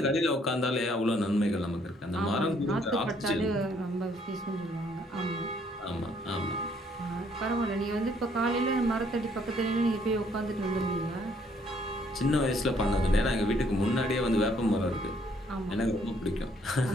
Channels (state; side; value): normal; both; correlation 0.66